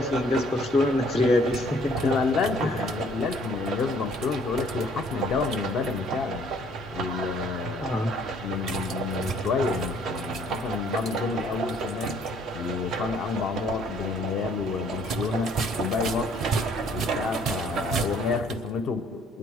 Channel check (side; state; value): both; normal; correlation 0.60